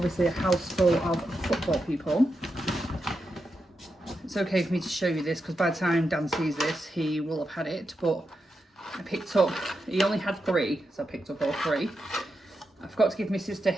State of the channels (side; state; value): both; normal; correlation 0.87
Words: a house full of football people. It's okay for me to show you this because by the time Dan sees this, he will have had it, but I picked up, he only had 3, so I picked up all 3. I forgot to give my sister